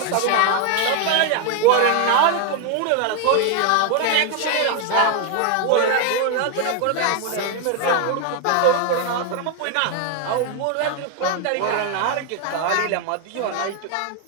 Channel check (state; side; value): different; both; correlation 0.01